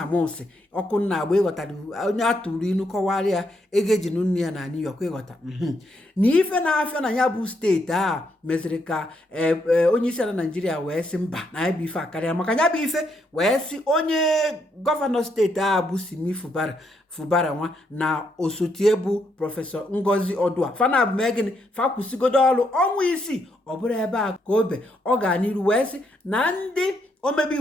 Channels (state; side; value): normal; both; correlation 0.76